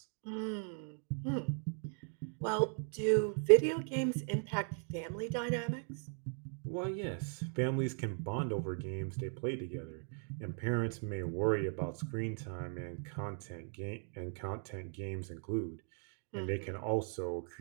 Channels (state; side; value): silent; left; 53 dB below the other